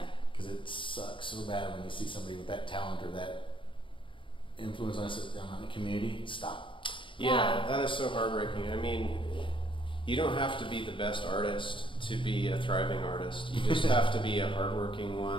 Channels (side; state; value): right; late; 0.25 ms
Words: because it sucks so bad when you see somebody with that talent or that influence on the community stop. Yeah, that is so heartbreaking. I mean, you don't have to be the best artist to be a thriving artist. You just have to be a hardworking